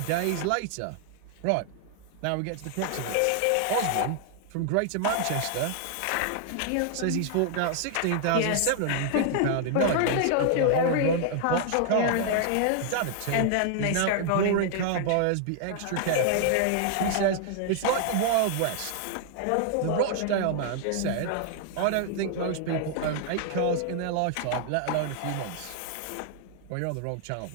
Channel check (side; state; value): both; different; correlation 0.00